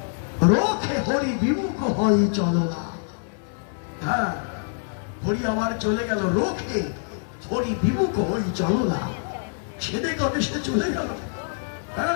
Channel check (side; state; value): right; silent; digital silence